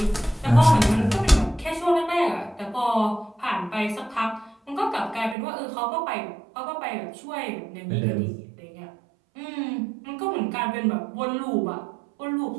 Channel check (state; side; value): drops out; left; at 5.4 s